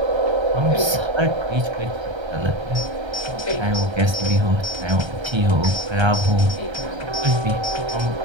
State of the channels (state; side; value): late; left; 1.3 ms